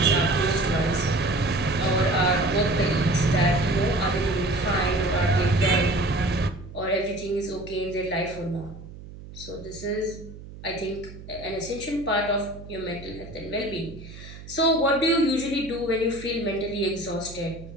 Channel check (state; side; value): noise; right; hum, 15 dB below the sound